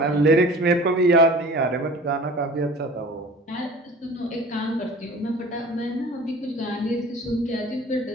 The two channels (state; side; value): normal; both; correlation 0.43